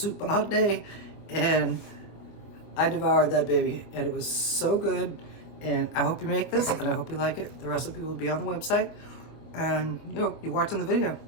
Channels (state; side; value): late; right; 24 ms